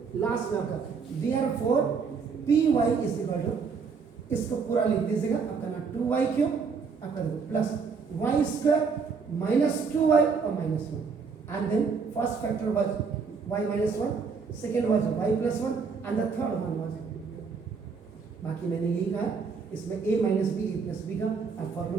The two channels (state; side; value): quieter; left; 5.4 dB